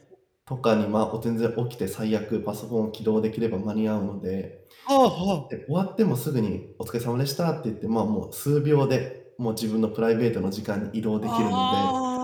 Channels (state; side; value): identical; both; correlation 1.00